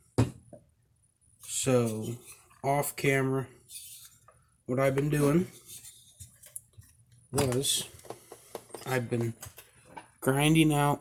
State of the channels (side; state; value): both; identical; correlation 1.00